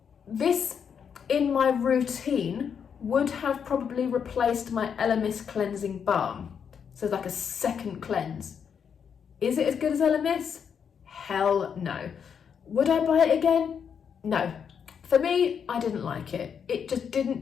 This, in my routine, would have probably replaced my Elemis cleansing balm. So it's like a second cleanse. Is it as good as Elemis? Hell no. Would I buy it again? No. For me, I didn't like it. It just didn't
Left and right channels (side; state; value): right; quieter; 7.2 dB